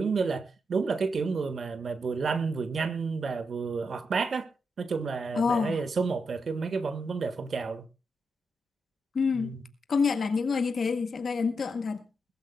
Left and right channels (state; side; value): normal; both; correlation 0.83